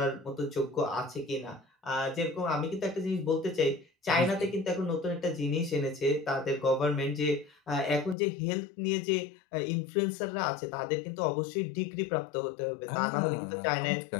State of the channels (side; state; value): right; drops out; at 8.2 s